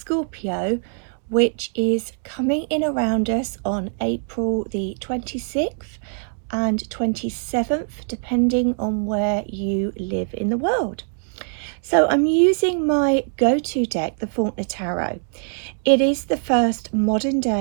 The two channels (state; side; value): silent; left; 64 dB below the other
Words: which is coming in around us on April the 26th and 27th, depending on where you live in the world. So I'm using my go-to deck, the Faulkner Tarot. It is the first modern